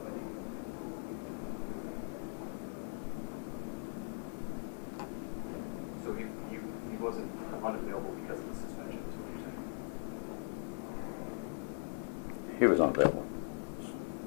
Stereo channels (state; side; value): silent; right; digital silence